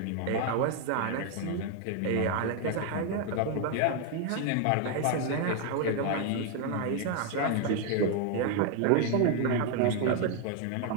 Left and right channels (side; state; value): both; different; correlation 0.01